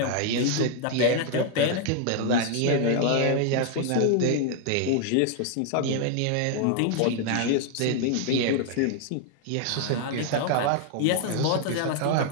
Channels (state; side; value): different; both; correlation 0.00